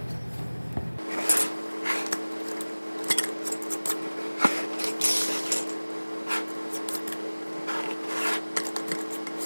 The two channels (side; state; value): both; inverted; correlation -1.00